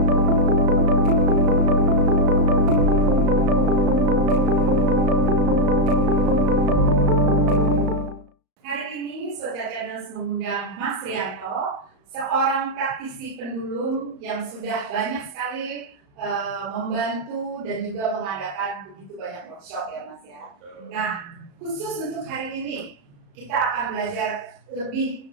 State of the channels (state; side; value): late; left; 35 ms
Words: ini Soja Channels mengundang Mas Rianto, seorang praktisi pendulum yang sudah banyak sekali membantu dan juga mengadakan begitu banyak workshop ya Mas ya. Nah, khusus untuk hari ini kita akan belajar lebih